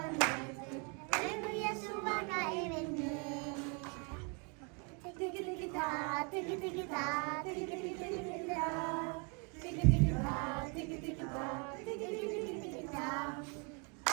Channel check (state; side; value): quieter; left; 35.1 dB